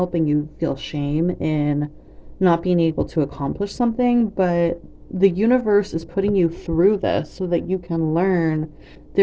and you feel shame in not being able to accomplish something. But the universe is putting you through this so that you can learn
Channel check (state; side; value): identical; both; correlation 1.00